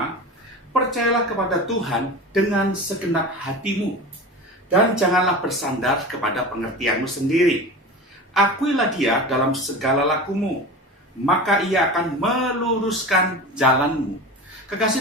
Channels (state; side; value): normal; both; correlation 0.31